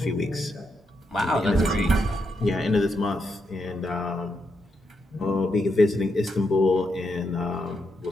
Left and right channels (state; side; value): normal; both; correlation 0.81